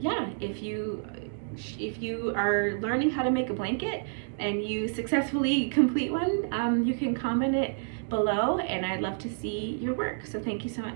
if you are learning how to make a blanket and you successfully complete one, you can comment it below, and I'd love to see your work. So thank you so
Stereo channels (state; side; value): silent; left; digital silence